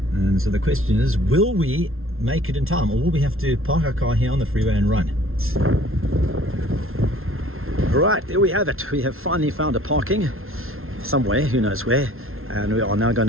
And so the question is, will we make it in time, or will we have to park our car here on the freeway and run? Right, there we have it. We have finally found a parking somewhere, who knows where, and we are now going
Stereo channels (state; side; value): late; left; 0.61 ms